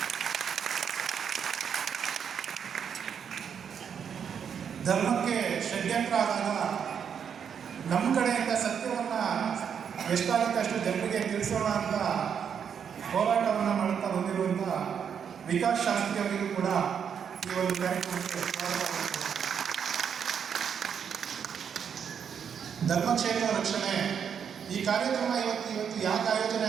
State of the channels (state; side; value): quieter; left; 7.6 dB